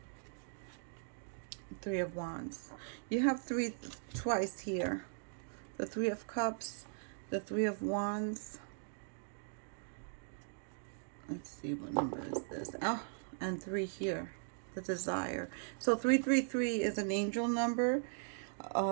Three of Wands. You have three twice here. The Three of Cups, the Three of Wands. Let's see, what number is this? Oh, and 3 here, the Desire. So 333 is an angel number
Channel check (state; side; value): silent; left; digital silence